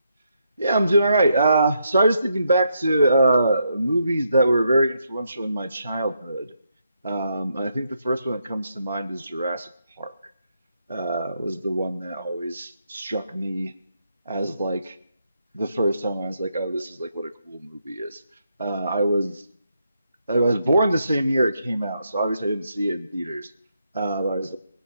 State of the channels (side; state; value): both; inverted; correlation -0.79